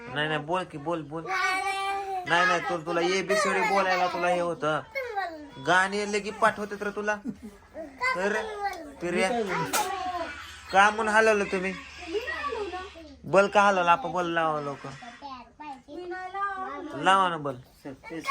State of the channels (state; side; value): identical; both; correlation 1.00